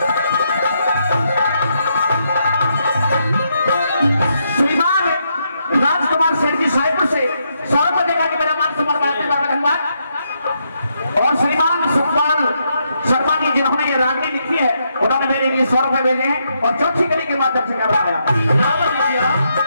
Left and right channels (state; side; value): inverted; both; correlation -0.78